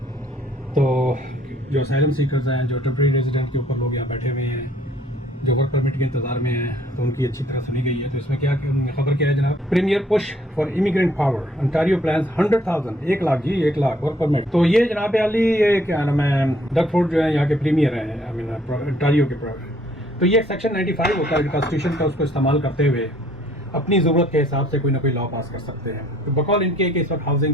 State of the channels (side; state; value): both; normal; correlation 0.62